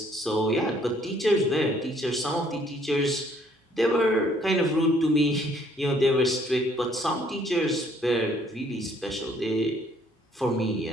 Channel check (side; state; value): both; normal; correlation 0.63